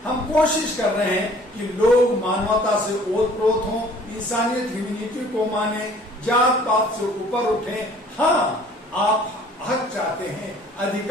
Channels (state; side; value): normal; both; correlation 0.53